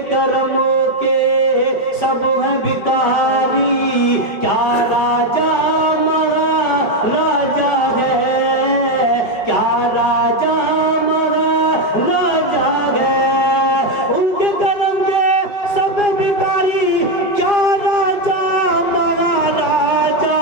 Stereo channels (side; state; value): right; late; 4.9 ms